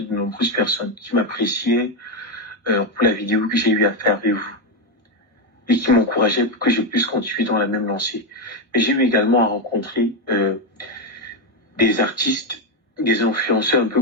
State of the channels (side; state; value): both; normal; correlation 0.06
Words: de nombreuses personnes qui m'appréciaient pour la vidéo que j'ai eu à faire avec vous et qui m'encourageaient pour que je puisse continuer dans la même lancée. Mais j'ai eu également à rencontrer des artistes, des influenceurs un peu